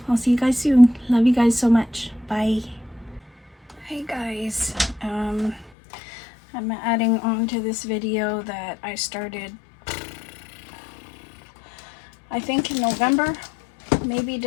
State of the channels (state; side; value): drops out; right; at 5.7 s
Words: I'll see you guys soon. Love you guys so much. Bye. Hey guys, I'm adding on to this video that I started, I think in November, maybe